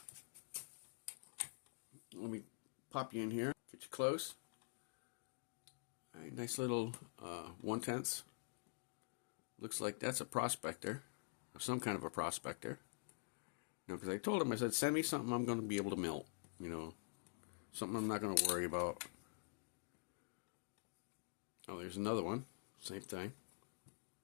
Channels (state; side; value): silent; right; digital silence